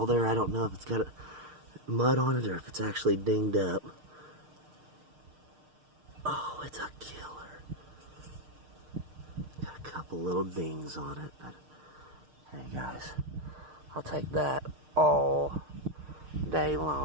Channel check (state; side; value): late; left; 6.6 ms